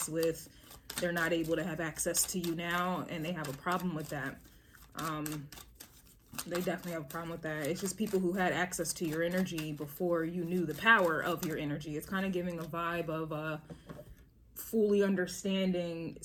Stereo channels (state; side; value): identical; both; correlation 1.00